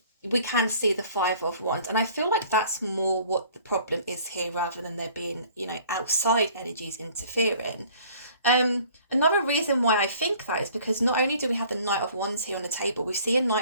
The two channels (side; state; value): both; inverted; correlation -0.53